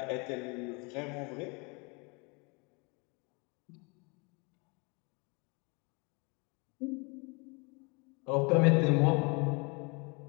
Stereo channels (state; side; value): quieter; right; 30.8 dB